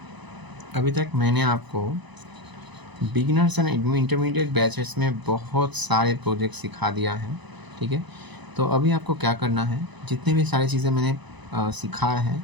अभी तक मैंने आपको बिगिनर्स एंड इंटरमीडिएट बैचेस में बहुत सारे प्रोजेक्ट सिखा दिया है, ठीक है। तो अभी आपको क्या करना है, जितने भी सारी चीज़ें मैंने सिखाया है,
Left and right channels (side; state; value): left; late; 1.0 ms